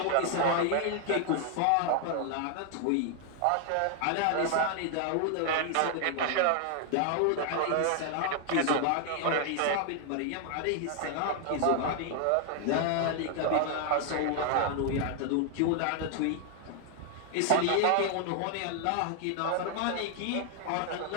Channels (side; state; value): both; different; correlation 0.00